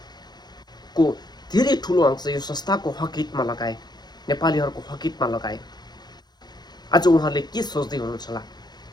धेरै ठुलो अंश यो संस्थाको हकितमा लगाए, नेपालीहरूको हकितमा लगाए, आज उहाँहरूले के सोच्दै हुनुहुन्छ होला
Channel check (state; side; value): late; right; 0.20 ms